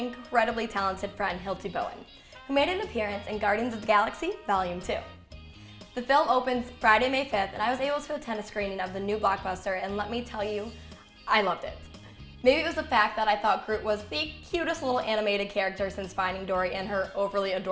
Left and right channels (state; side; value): identical; both; correlation 1.00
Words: talented friend Hilty Bowen, who made an appearance in Guardians of the Galaxy Volume 2. The film opens Friday, May 5th, and I was able to attend a screening of the new blockbuster, and let me tell you, I loved it. Maybe it was the fact that I thought Groot was the cutest little animated character since Finding Dory and her overly